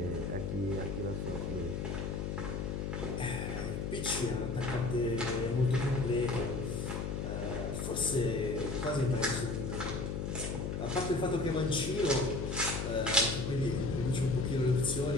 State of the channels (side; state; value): left; noise; hum, 2 dB below the sound